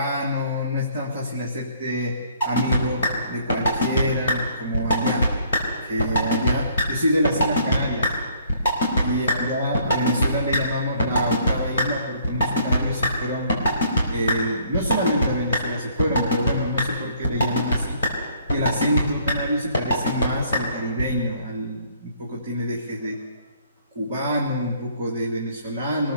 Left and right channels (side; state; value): both; inverted; correlation -0.62